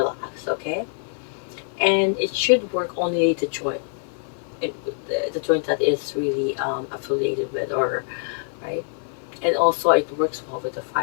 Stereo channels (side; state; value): right; silent; 59 dB below the other